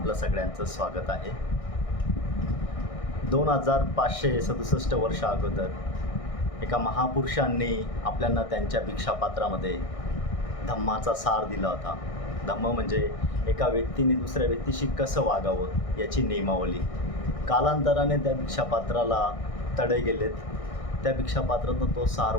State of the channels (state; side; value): late; right; 1.6 ms